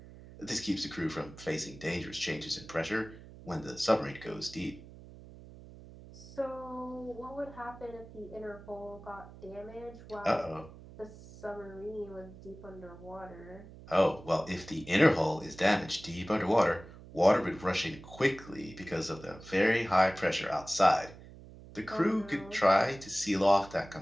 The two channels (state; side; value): noise; right; hum, 18 dB below the sound